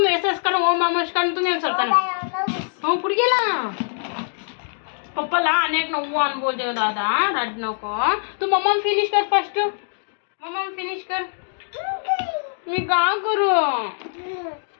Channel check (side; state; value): right; silent; digital silence